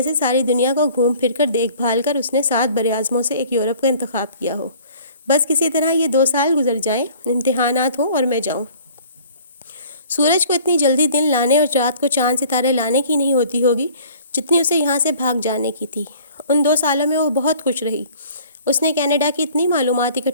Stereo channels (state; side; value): inverted; both; correlation -0.51